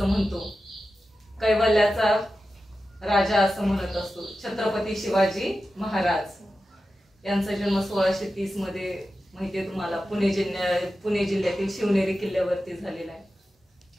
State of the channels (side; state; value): both; normal; correlation 0.92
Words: म्हणतो, कैवल्याचा राजा असं म्हणत असतो। छत्रपती शिवाजी महाराज यांचा जन्म 1630 मध्ये माहितीये तुम्हाला पुणे जिल्ह्यातील शिवनेरी किल्ल्यावरती झालेला आहे।